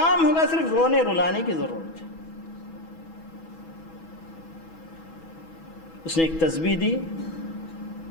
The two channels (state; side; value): late; right; 6.1 ms